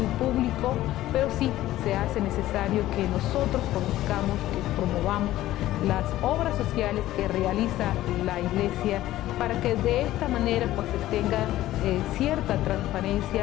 público, pero sí se hace necesario que nosotros conozcamos, que promovamos las obras sociales que realiza la Iglesia, para que de esta manera pues se tenga cierta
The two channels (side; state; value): right; quieter; 14.9 dB